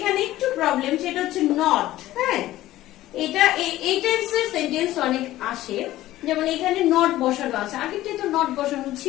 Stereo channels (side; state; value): right; quieter; 15.3 dB